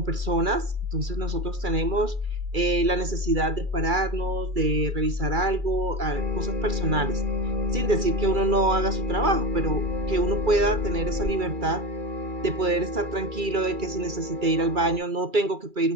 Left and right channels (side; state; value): left; late; 2.3 ms